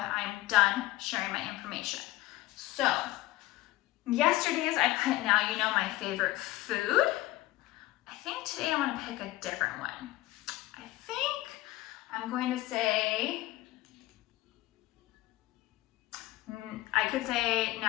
I'm done sharing my information. So yesterday's I put now you know my favorite food. I think today I want to pick a different one. I think I'm going to say, I could say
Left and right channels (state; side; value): quieter; right; 17.7 dB